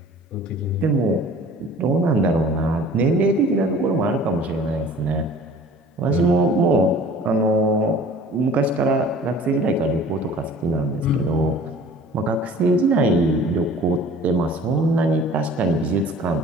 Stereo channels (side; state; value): both; normal; correlation 0.47